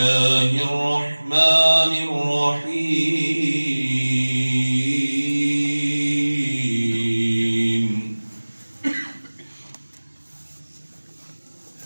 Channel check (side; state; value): both; inverted; correlation -1.00